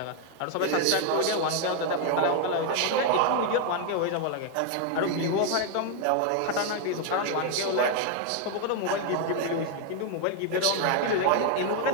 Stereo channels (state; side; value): different; both; correlation 0.00